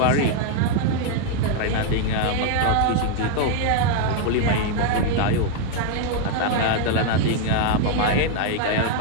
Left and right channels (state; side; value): different; both; correlation 0.00